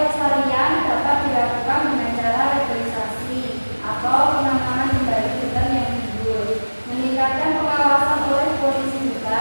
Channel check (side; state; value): both; inverted; correlation -1.00